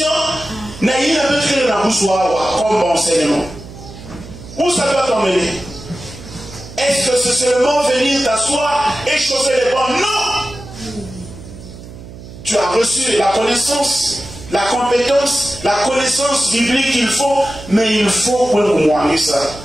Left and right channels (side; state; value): right; noise; hum, 15 dB below the sound